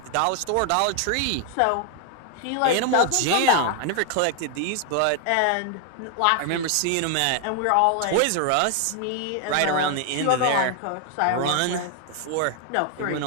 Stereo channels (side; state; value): both; different; correlation 0.00